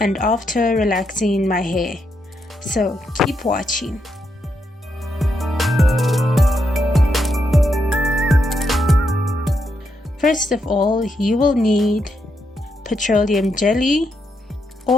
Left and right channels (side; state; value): both; normal; correlation 0.81